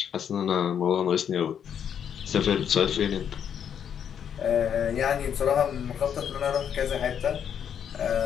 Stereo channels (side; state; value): right; quieter; 8.4 dB